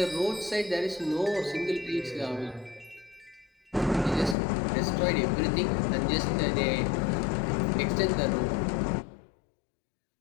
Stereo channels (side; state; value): right; drops out; at 4.4 s